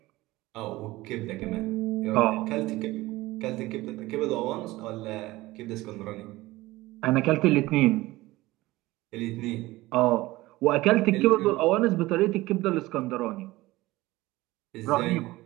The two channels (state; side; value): quieter; left; 18.9 dB